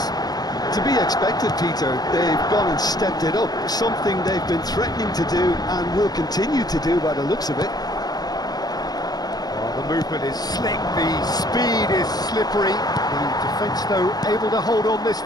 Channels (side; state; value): right; late; 0.19 ms